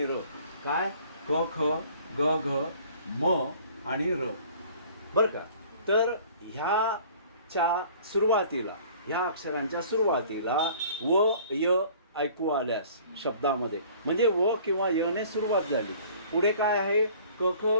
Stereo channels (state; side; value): inverted; both; correlation -0.51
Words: र. काय क ख ग घ म आणि र, बरं का. तर ह्याच्या सुरुवातीला, ह्या अक्षरांच्या सुरुवातीला व य ऐकू आल्यास शब्दामध्ये म्हणजे व किंवा यने सुरुवात झाली, पुढे काय आहे क ख